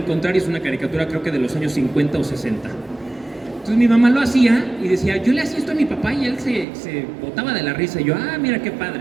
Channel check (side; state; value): left; drops out; at 6.7 s